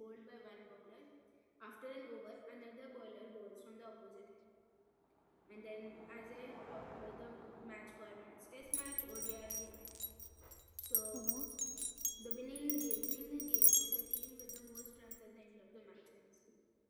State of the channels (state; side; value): identical; both; correlation 1.00